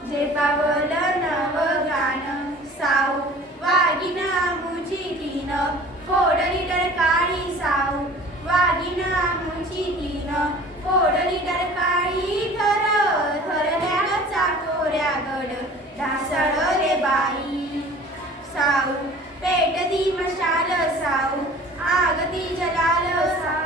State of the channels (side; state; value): both; normal; correlation 0.45